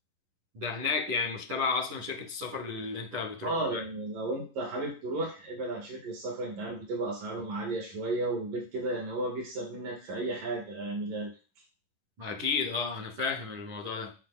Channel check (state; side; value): late; left; 11 ms